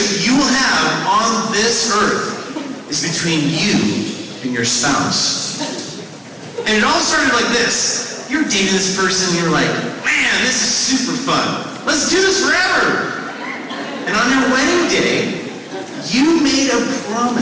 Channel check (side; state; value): both; identical; correlation 1.00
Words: you will have on this earth is between you and your spouse. And it all started like this. You're dating this person, you're like, man, this is super fun. Let's do this forever. And on your wedding day, you made a